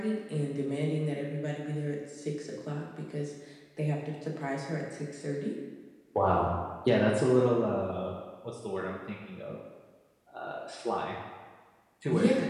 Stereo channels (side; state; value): both; identical; correlation 1.00